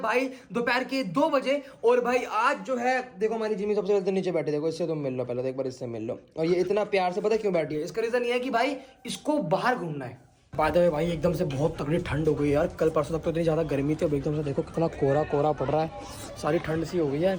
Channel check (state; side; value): identical; both; correlation 1.00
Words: भाई दोपहर के 2 बजे। और भाई आज जो है देखो हमारी जिमी सबसे पहले नीचे बैठे, देखो इससे तुम मिल लो पहले तो, एक बार इससे मिल लो। और ये इतना प्यार से पता क्यों बैठी है? इसका रीजन ये है कि भाई इसको बाहर घूमना है। बात है भाई एकदम से बहुत तगड़ी ठंड हो गई यार। कल परसों तक तो इतनी ज्यादा गर्मी थी, अब एकदम से देखो कितना कोहरा कोहरा पड़ रहा है। सारी ठंड सी हो गई है,